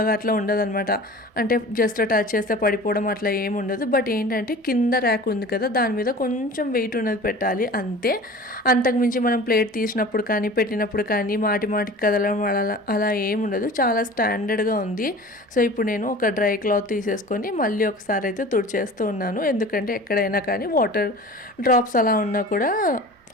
అట్లా ఉండదు అనమాట. అంటే జస్ట్ టచ్ చేస్తే పడిపోవడం అట్లా ఏమి ఉండదు. బట్ ఏంటంటే కింద ర్యాక్ ఉంది కదా, దాని మీద కొంచెం వెయిట్ ఉన్నది పెట్టాలి అంతే. అంతకుమించి మనం ప్లేట్ తీసినప్పుడు కానీ పెట్టినప్పుడు కానీ మాటికి కదలడం అలా ఏమి ఉండదు. చాలా స్టాండర్డ్గా ఉంది. సో ఇప్పుడు నేను ఒక డ్రై క్లాత్ తీసేసుకొని మళ్ళీ ఒకసారి అయితే తుడిచేస్తూ ఉన్నాను. ఎందుకంటే ఎక్కడైనా కానీ వాటర్ డ్రాప్స్ అలా ఉన్నా కూడా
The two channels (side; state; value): both; normal; correlation 0.40